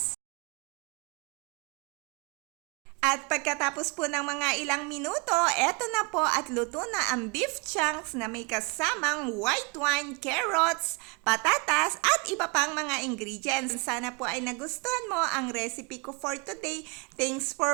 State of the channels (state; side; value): quieter; left; 30.4 dB